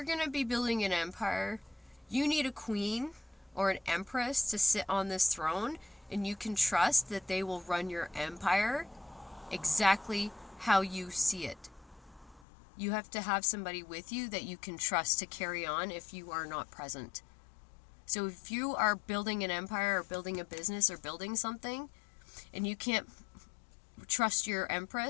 going to be building an empire, you need a queen or an empress to sit on this throne, and you can trust that they will run your empire exactly how you see it. You have to have somebody with you that you can trust to carry on if you are not present. So if you are building an empire or building a business or building something, and you can't trust your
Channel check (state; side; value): drops out; right; at 12.5 s